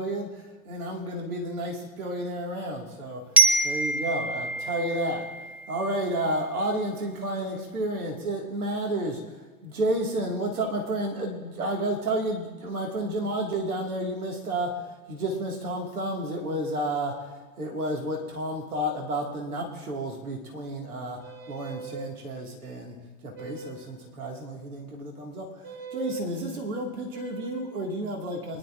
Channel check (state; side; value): normal; both; correlation 0.05